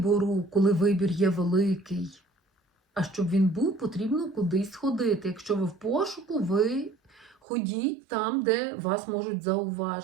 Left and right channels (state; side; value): drops out; left; at 7.4 s